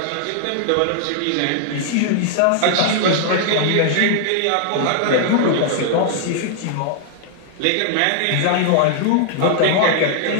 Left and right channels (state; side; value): different; both; correlation 0.00